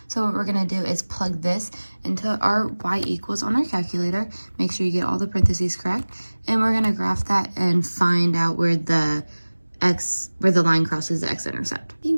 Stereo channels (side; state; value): both; inverted; correlation -1.00